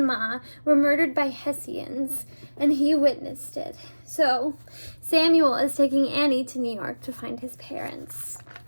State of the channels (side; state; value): both; inverted; correlation -1.00